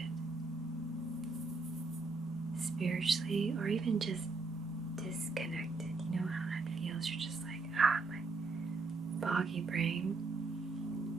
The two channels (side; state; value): left; quieter; 3.8 dB